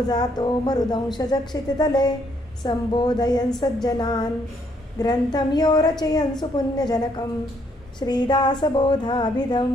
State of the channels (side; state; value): both; normal; correlation 0.70